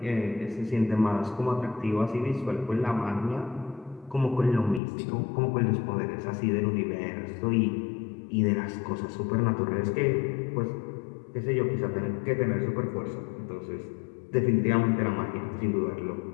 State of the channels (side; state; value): right; drops out; at 4.8 s